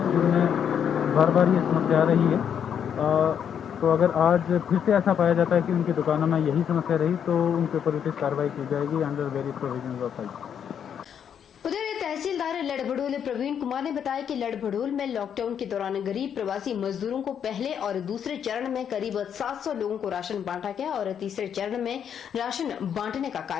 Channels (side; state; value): right; quieter; 8.3 dB